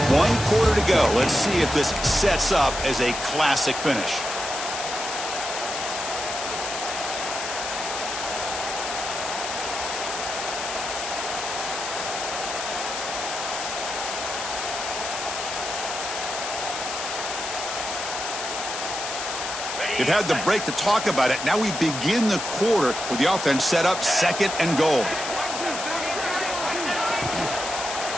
quarter to go. Let's see if this sets up as a classic finish. They've had the break to talk about it. Now we begin the quarter with the offense set up second and goal.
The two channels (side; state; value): left; noise; hiss, 5 dB below the sound